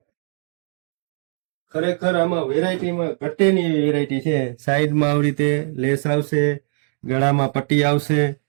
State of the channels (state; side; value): silent; left; digital silence